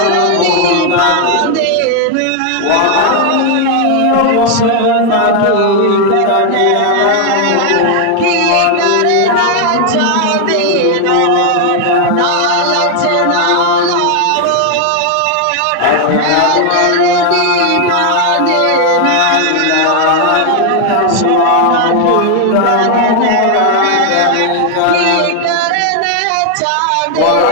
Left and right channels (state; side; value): different; both; correlation 0.00